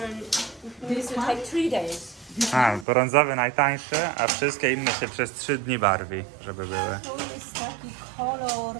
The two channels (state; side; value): drops out; left; at 2.9 s